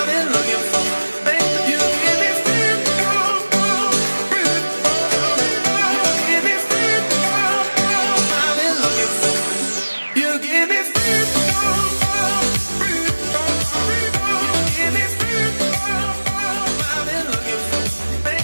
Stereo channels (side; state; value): both; inverted; correlation -1.00